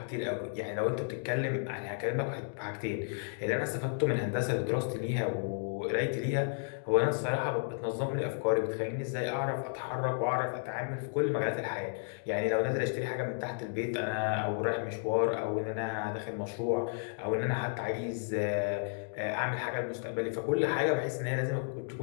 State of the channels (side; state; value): right; silent; digital silence